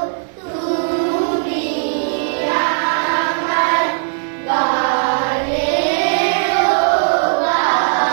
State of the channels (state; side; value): silent; left; digital silence